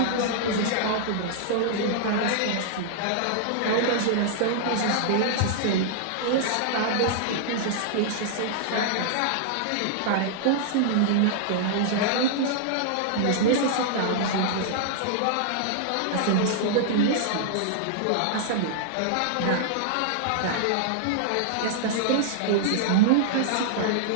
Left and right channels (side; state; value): both; different; correlation -0.01